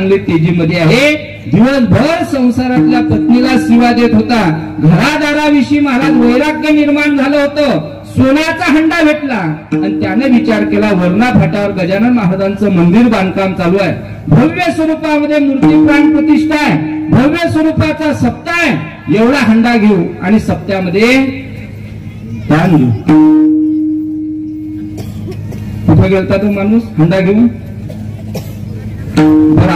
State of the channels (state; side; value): identical; both; correlation 1.00